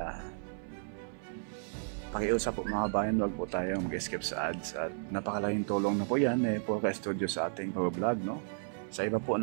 pakiusap po mga kabayan, wag po tayong mag-skip sa ads at napakalaking tulong na po yan po ka-studio sa ating pag-vlog, no? Sa iba po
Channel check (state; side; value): silent; left; 55 dB below the other